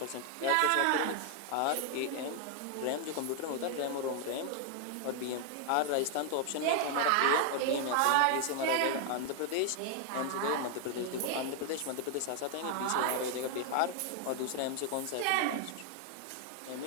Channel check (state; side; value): different; both; correlation 0.00